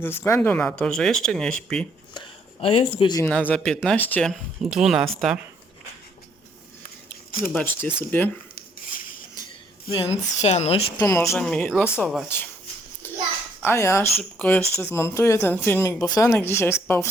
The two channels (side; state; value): both; normal; correlation 0.67